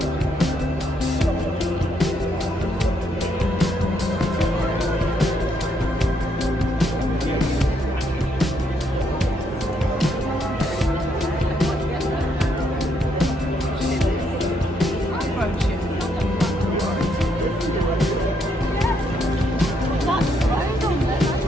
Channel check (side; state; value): both; normal; correlation 0.74